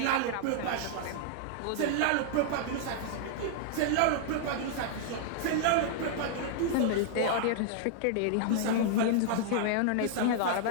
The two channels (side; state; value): both; different; correlation -0.01